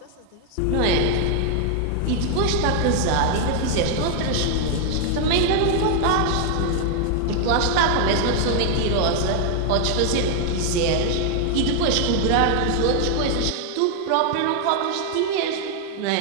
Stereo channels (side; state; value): both; different; correlation 0.00